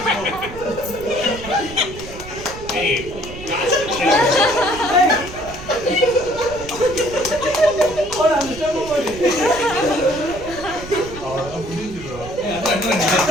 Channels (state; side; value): noise; right; rumble, 14 dB below the sound